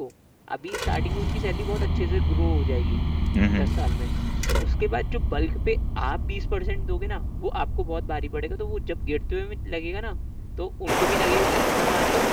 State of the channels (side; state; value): both; identical; correlation 1.00